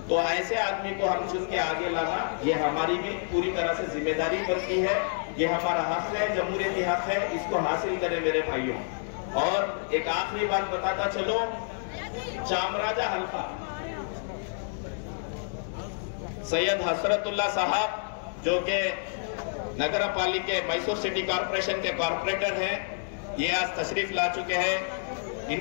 तो ऐसे आदमी को हम चुन के आगे लाना, ये हमारी भी पूरी तरह से जिम्मेदारी बनती है। ये हमारा हक है, जमहूरियती हक है, इसको हासिल करें मेरे भाइयों। और एक आखिरी बात बताता चलो, चामराजा हल्का सैयद हसरतुल्ला साहब, जो के नगर पालिका मैसूर सिटी कॉर्पोरेशन के कॉर्पोरेटर हैं, ये आज तशरीफ ला चुके हैं।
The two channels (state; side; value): silent; right; digital silence